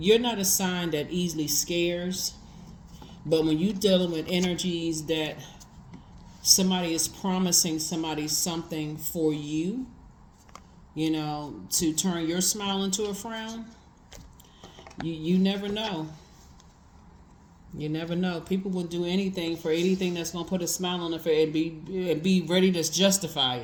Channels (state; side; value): identical; both; correlation 1.00